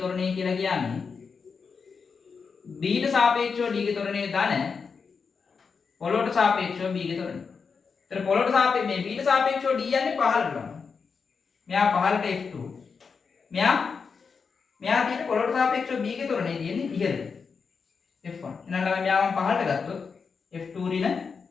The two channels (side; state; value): right; quieter; 5.5 dB